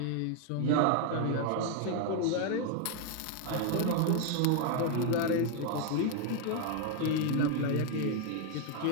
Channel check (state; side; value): different; both; correlation 0.00